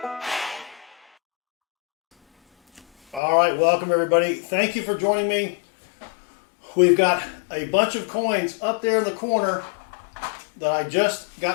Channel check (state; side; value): drops out; right; at 3.2 s